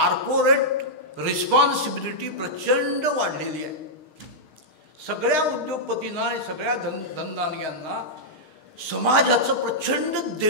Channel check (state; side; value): late; right; 6.5 ms